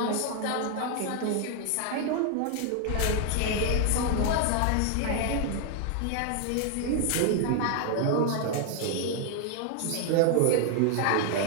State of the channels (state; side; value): different; both; correlation 0.00